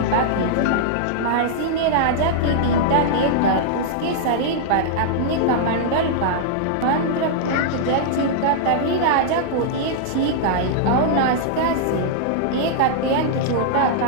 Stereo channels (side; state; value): both; different; correlation -0.02